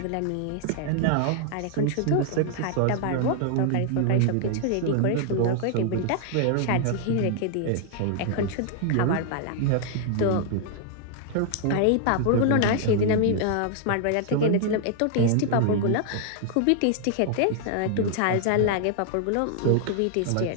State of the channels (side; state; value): both; different; correlation 0.00